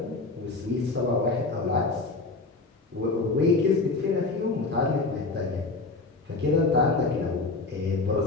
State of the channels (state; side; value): quieter; right; 3.7 dB